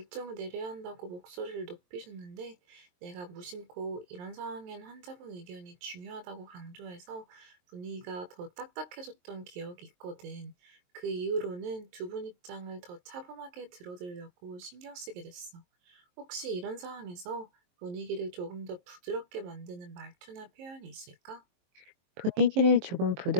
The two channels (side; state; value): left; late; 23 ms